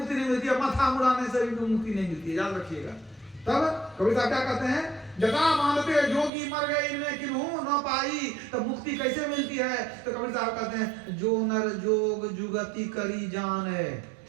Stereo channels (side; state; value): left; drops out; at 6.3 s